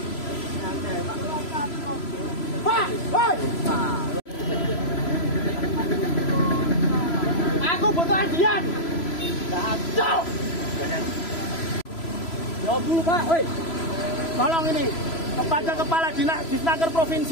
Pak, hei. Aku butuh adian. Stop. Jawab dulu Pak, hei. Tolong ini kepada Kepala Dinas Disnaker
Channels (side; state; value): right; late; 3.0 ms